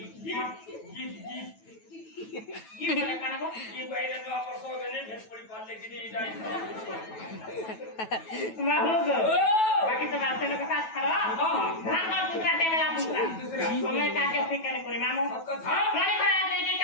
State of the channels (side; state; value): right; late; 9.2 ms